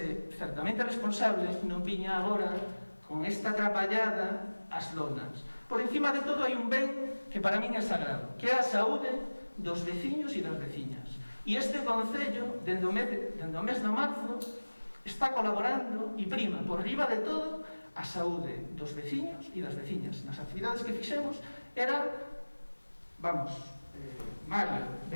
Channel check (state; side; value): inverted; both; correlation -1.00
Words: certamente responsable, non viña agora con esta atrapallada as lonas. Por encima de todo hai un ben que para min é sagrado, que é a saúde dos veciños e das veciñas. E este Concello, dende o mes de marzo, está colaborando e prima por riba de todo a saúde dos veciños e das veciñas. Nas actividades que fixemos era, Mario,